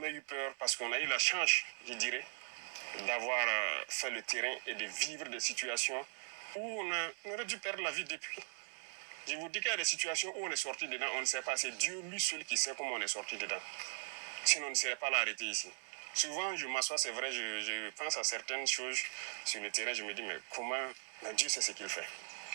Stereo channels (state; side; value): silent; left; 52 dB below the other